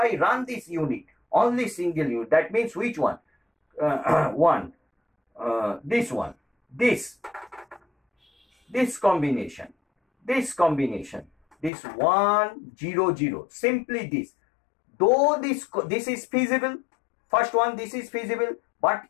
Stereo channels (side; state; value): right; drops out; at 11.7 s